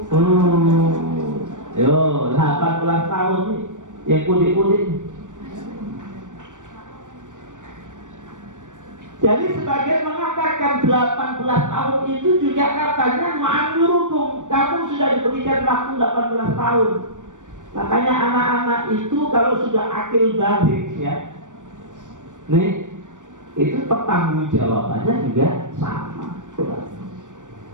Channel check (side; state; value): left; late; 0.87 ms